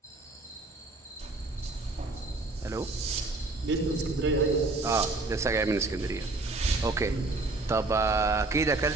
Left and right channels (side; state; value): left; quieter; 3.2 dB